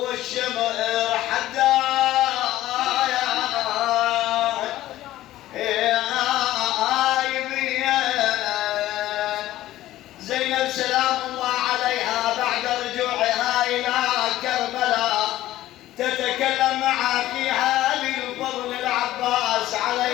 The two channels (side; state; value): right; quieter; 14.8 dB